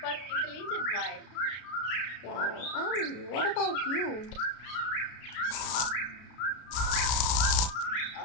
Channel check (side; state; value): right; late; 33 ms